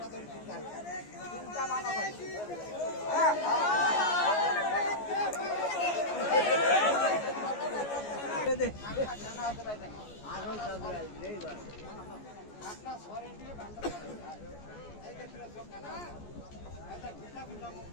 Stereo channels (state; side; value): late; right; 14 ms